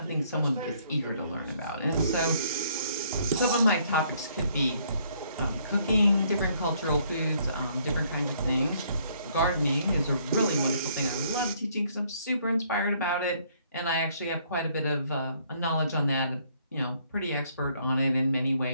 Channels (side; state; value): both; inverted; correlation -0.66